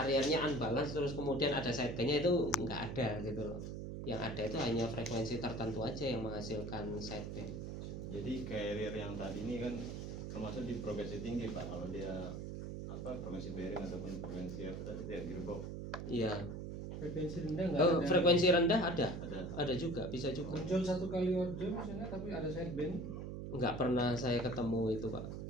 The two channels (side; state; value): right; noise; hum, 6 dB below the sound